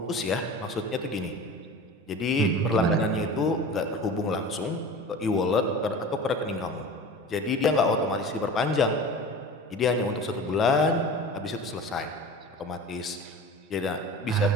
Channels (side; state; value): both; normal; correlation 0.36